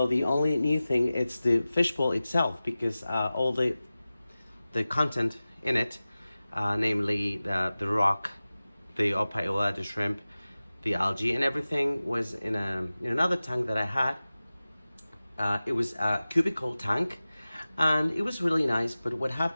the only new thing is the fishbowl itself, because all the content in it, namely the rock, the Opae Ula, the shrimp, the algae and everything was in another tank that I had. It was a cubicle tank and it was really nice, but what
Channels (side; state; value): both; inverted; correlation -0.96